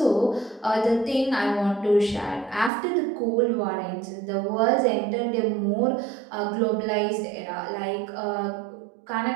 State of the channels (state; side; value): drops out; left; at 2.7 s